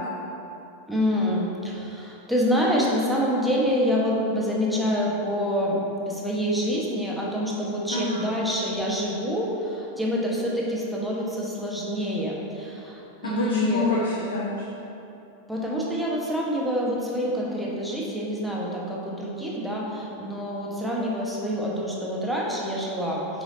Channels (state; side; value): normal; both; correlation 0.23